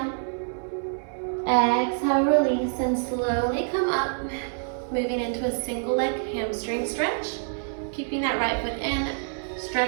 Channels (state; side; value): silent; left; digital silence